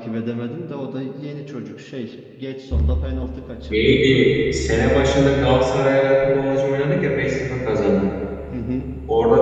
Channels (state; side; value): identical; both; correlation 1.00